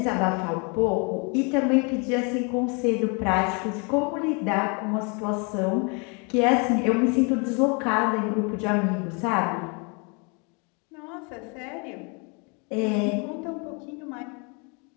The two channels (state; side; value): quieter; right; 33.4 dB